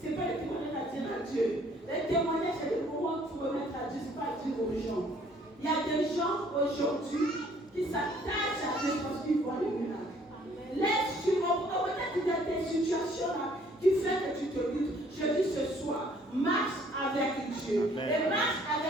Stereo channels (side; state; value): both; normal; correlation 0.60